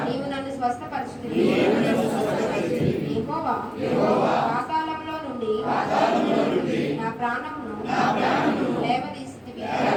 నీవు నన్ను స్వస్థపరచుతివి. యెహోవా పాతాళంలో నుండి నా ప్రాణమును లేవదీసితివి.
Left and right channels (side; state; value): both; identical; correlation 1.00